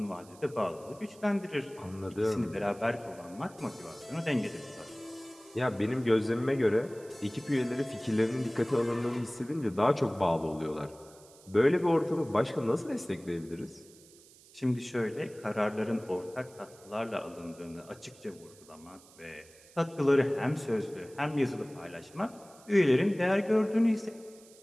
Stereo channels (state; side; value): noise; right; hiss, 24 dB below the sound